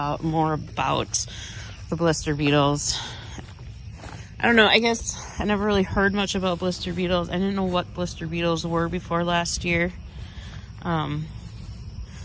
more about the blister beetles. I don't know, I guess I never really heard much about blister beetles. I didn't know what blister beetles were before last year. But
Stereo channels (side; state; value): both; identical; correlation 1.00